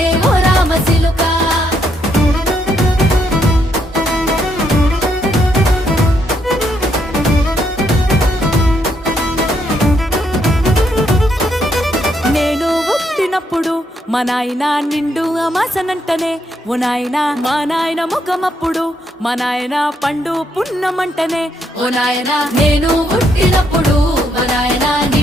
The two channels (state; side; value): normal; both; correlation 0.75